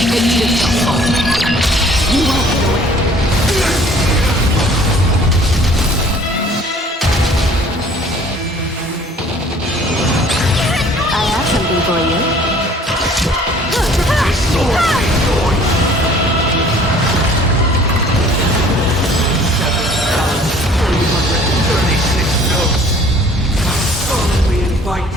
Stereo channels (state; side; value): normal; both; correlation 0.53